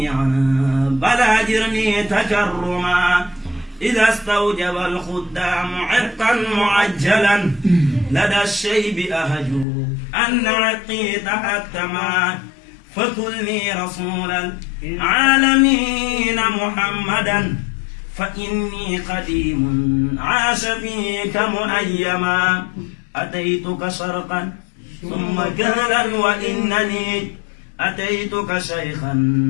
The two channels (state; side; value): drops out; right; at 9.7 s